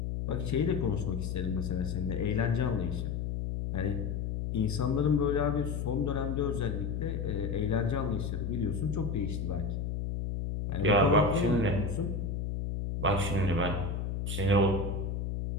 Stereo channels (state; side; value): noise; left; hum, 2 dB below the sound